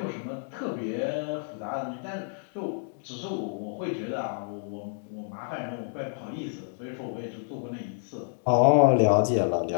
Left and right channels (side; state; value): right; silent; digital silence